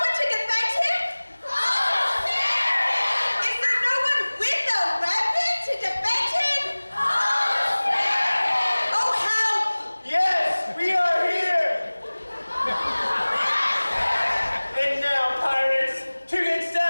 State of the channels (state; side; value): inverted; both; correlation -1.00